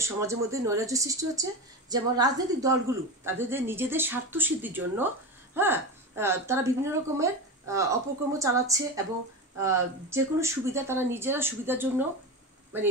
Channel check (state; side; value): normal; both; correlation 0.22